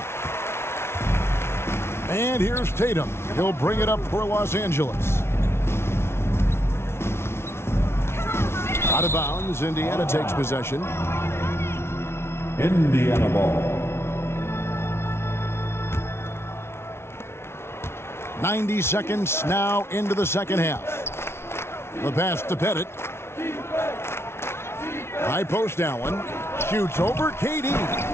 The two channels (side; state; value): right; late; 0.12 ms